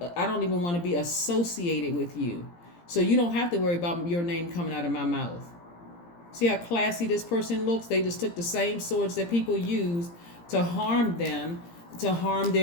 be associated with you. So you don't have to worry about your name coming out of my mouth. See how classy this person looks? They just took the same swords that people used to harm them, to harm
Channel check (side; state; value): right; late; 17 ms